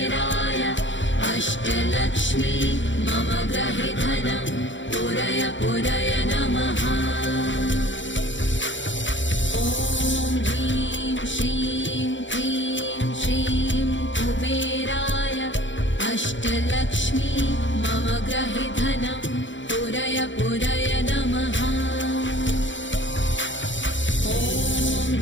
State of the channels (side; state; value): right; late; 0.55 ms